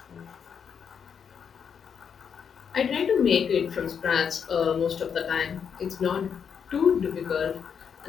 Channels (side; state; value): right; quieter; 7.1 dB